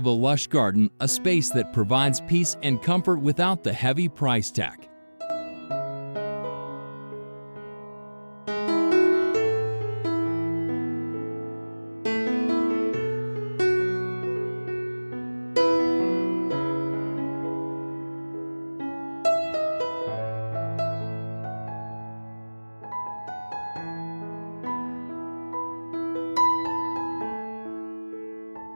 a lush garden, a space that provides peace and comfort without the heavy price tag.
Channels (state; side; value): inverted; both; correlation -1.00